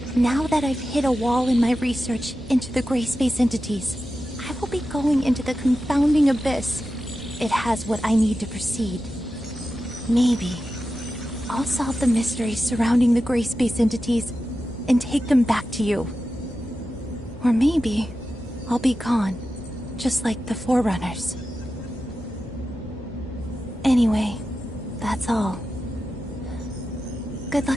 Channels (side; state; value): both; normal; correlation 0.92